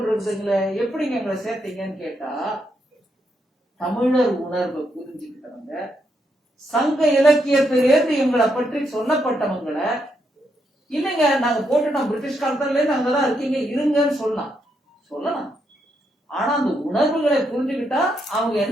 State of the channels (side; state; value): both; normal; correlation 0.79